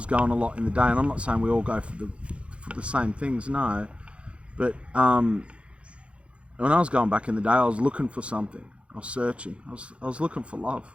going a lot in the day, and I'm not saying we all go for the same things, no, but when I was going back in the day, I was looking for something. I was searching. I was looking for love,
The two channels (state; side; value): late; left; 0.060 ms